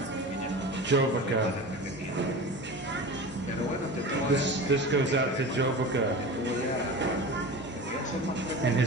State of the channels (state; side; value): normal; both; correlation 0.32